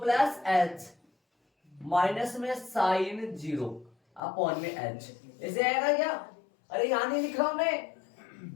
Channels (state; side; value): drops out; right; at 4.2 s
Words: प्लस एच, माइनस में साइन 0 अपॉन में एच। ऐसे आएगा क्या? अरे यहां नहीं लिख रहा हूं मैं।